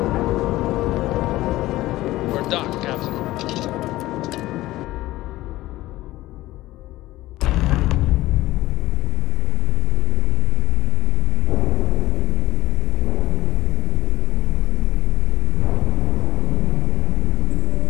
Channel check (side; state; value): right; quieter; 16.9 dB